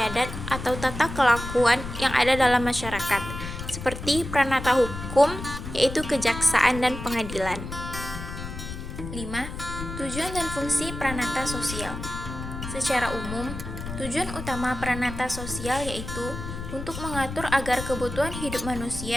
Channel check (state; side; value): noise; left; rumble, 8 dB below the sound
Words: atau tata kelakuan yang ada dalam masyarakat seperti pranata hukum, yaitu kejaksaan dan pengadilan. 5. Tujuan dan fungsi pranata sosial. Secara umum, tujuan utama pranata sosial yaitu untuk mengatur agar kebutuhan hidup